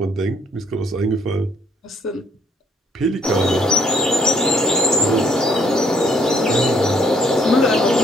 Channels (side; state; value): both; normal; correlation 0.67